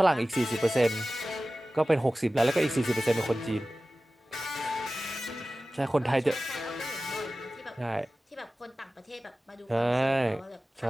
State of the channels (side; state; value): both; normal; correlation 0.96